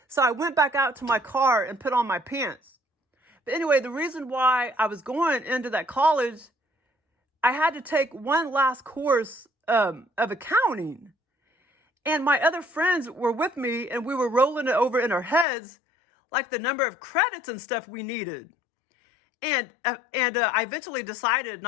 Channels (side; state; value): right; drops out; at 15.5 s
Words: So I went back out to my car and put on my pants. But anyway, the reason why I was going into that college, I had to take one last course of accounting. And my other friends were with me, and we were rolling it over in our heads, like the number of credits and stuff we needed. And I eventually decided